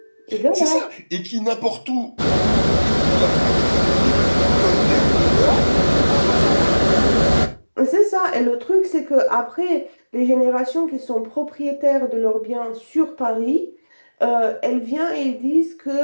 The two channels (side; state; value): both; inverted; correlation -1.00